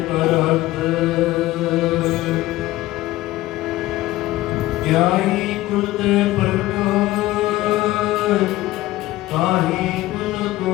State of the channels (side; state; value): right; quieter; 16.9 dB